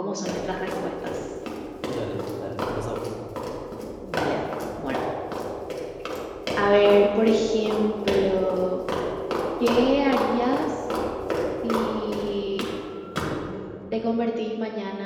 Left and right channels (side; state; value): both; identical; correlation 1.00